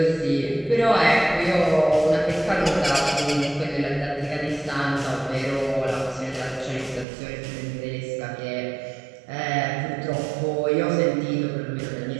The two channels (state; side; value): drops out; left; at 7.1 s